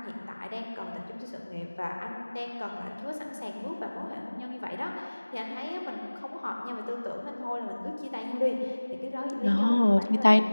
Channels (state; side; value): inverted; both; correlation -1.00